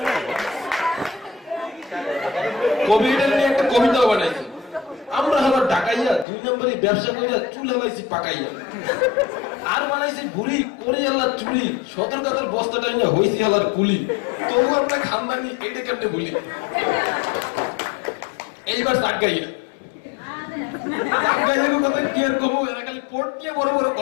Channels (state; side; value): drops out; right; at 6.2 s